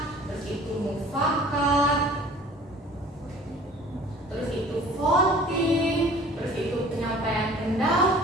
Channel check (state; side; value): normal; both; correlation 0.47